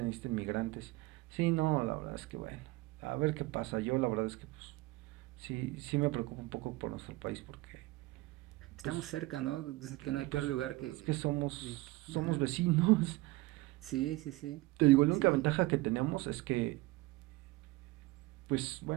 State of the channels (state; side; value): quieter; left; 20.4 dB